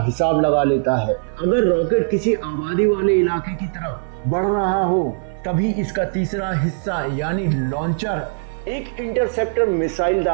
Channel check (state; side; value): silent; left; 59 dB below the other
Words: हिसाब लगा लेता है। अगर रॉकेट किसी आबादी वाले इलाके की तरफ बढ़ रहा हो तभी इसका तीसरा हिस्सा यानी लॉन्चर एक इंटरसेप्टर मिसाइल